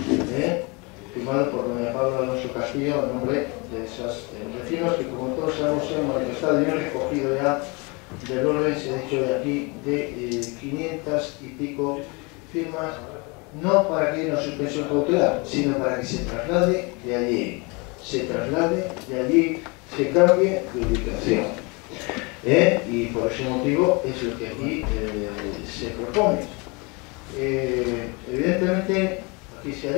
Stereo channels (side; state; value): right; quieter; 29.0 dB